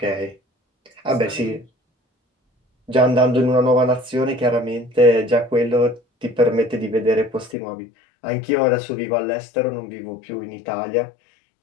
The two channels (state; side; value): drops out; right; at 7.6 s